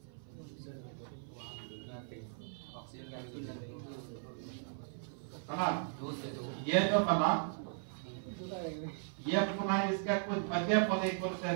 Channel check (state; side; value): silent; left; 53 dB below the other